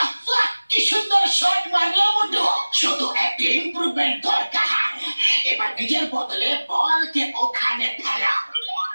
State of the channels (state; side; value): inverted; both; correlation -1.00